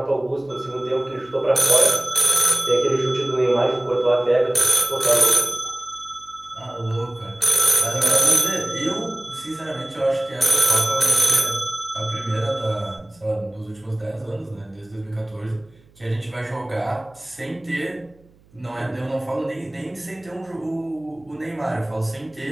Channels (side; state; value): right; noise; hum, 30 dB below the sound